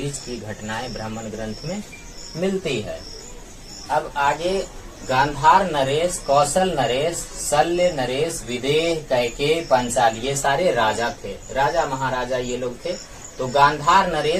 की घटनाएं ब्राह्मण ग्रंथ में मिलती है। अब आगे गांधार नरेश, कौशल नरेश, शल्य नरेश, विदेह, कैकेयी, पांचाल, ये सारे राजा थे, राजा महाराजा ये लोग थे। तो गांधार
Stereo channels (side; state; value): both; identical; correlation 1.00